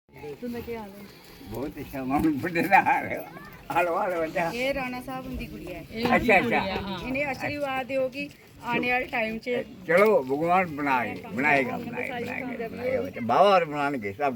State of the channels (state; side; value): identical; both; correlation 1.00